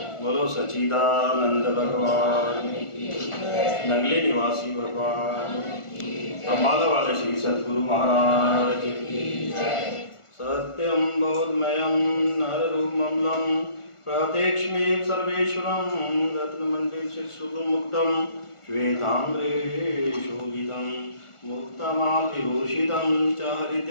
सच्चिदानंद भगवान, नगले निवासी भगवान, अम्बाला वाले श्री सद्गुरु महाराज की। सत्यम बोधमयम नररूपममलं प्रत्यक्षमेव सर्वेश्वरं रत्नमण्डित सुगुणमुक्तं श्वेताम्रे शोभितं मुक्तमाल्यभूषितं च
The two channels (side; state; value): right; late; 1.4 ms